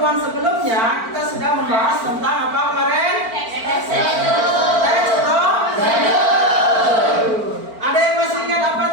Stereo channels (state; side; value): late; left; 4.4 ms